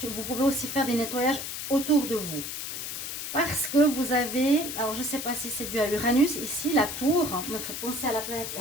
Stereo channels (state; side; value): noise; left; hiss, 6 dB below the sound